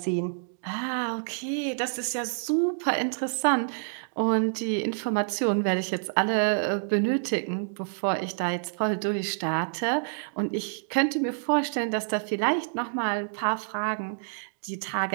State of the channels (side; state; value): left; silent; digital silence